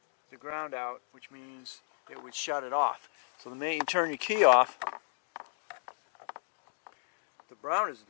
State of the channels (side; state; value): right; silent; digital silence